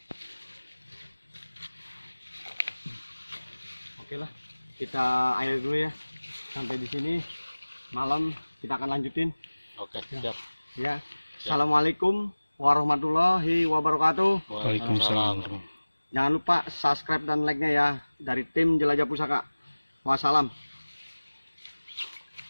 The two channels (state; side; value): inverted; both; correlation -1.00